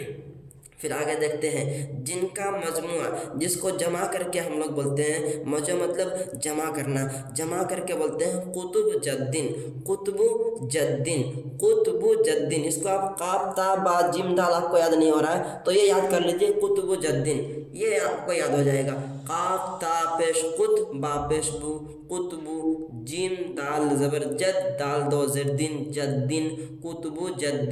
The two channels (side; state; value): both; identical; correlation 1.00